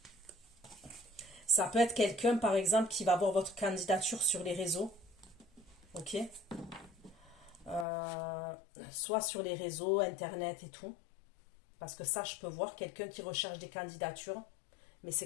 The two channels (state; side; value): drops out; right; at 7.9 s